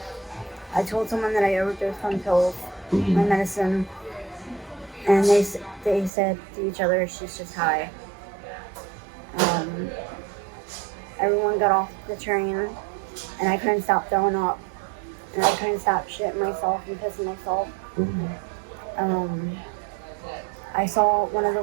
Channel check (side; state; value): left; drops out; at 6.1 s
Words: I told someone that I overdosed on pills, my Hmm. medicine, and they said to each other, "She's just high." Um, Everyone got off the train, and I couldn't stop throwing up, and I couldn't stop shitting myself and pissing myself. Hmm. Um, I saw one